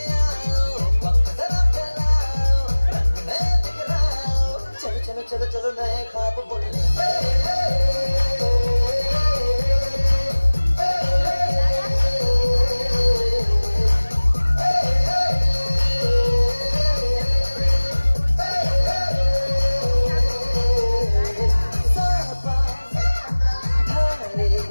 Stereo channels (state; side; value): inverted; both; correlation -1.00